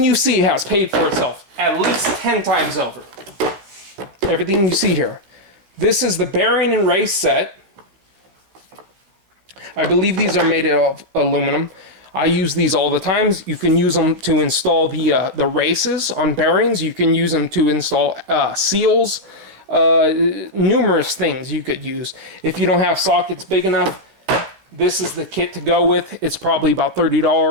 you see has paid for itself at least 10 times over. Everything you see here. This is the bearing and race set. I believe these are made of aluminum. I use these all the time. You can use them to install the races on bearings. You can use them to install seals. Numerous things you could use. If you don't have sockets big enough, this is the kit to go with. It's probably about $30,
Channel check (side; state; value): left; late; 16 ms